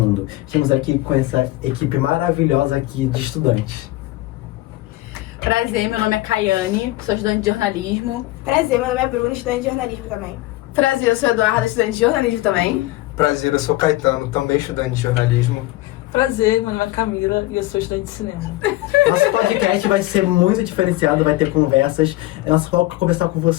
Estamos aqui com essa equipe maravilhosa aqui de estudantes. Prazer, meu nome é Caiane, sou estudante de jornalismo. Prazer, meu nome é Bruno, estudante de jornalismo também. Prazer, eu sou Eduardo, estudante de jornalismo também. Prazer, eu sou Caetano, também estudante de jornalismo. Prazer, meu nome é Camila e eu sou estudante de cinema. Nosso podcast vai ser muito diferenciado, vai ter conversas. É nosso foco é conversar com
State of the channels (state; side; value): quieter; right; 18.2 dB